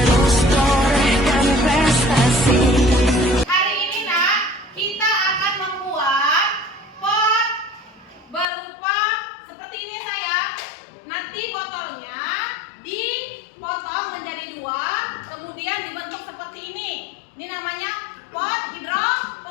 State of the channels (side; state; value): right; drops out; at 8.5 s